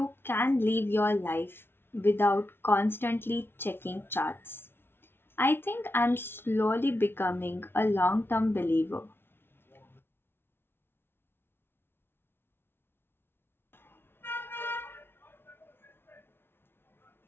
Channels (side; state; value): right; late; 0.11 ms